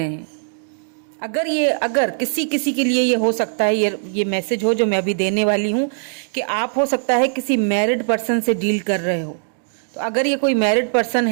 हैं। अगर किसी किसी के लिए ये हो सकता है, ये मैसेज हो जो मैं अभी देने वाली हूँ, कि आप हो सकता है किसी मैरिड पर्सन से डील कर रहे हो। तो अगर ये कोई मैरिड पर्सन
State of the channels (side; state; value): left; silent; digital silence